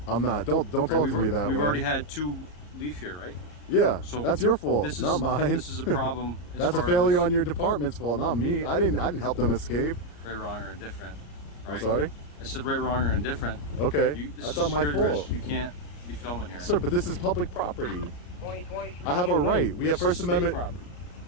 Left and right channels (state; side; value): late; right; 34 ms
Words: I'm not. Don't talk to me that way. We've already had 2 leave here, right? Yeah, So that's your fault, this is, not mine. This is a problem. as That's a far failure as on your department's fault, not me. I didn't help them escape. right, wrong, or indifferent. Right? I'm sorry. I said right, wrong, or indifferent. Okay, This that's is not my security fault, risk. You can't be filming here. sir. But this is public property. 2023. I have a right. We have This is First state Amendment. property.